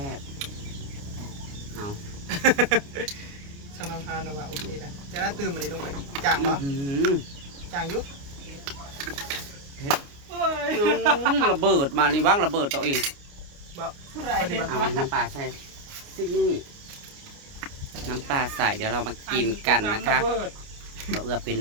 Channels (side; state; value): left; late; 29 ms